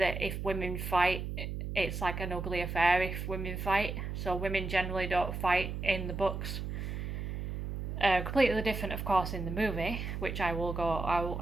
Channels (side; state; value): right; noise; hum, 4 dB below the sound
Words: if women fight, it's like an ugly affair if women fight. So women generally don't fight in the books. Completely different, of course, in the movie, which I will go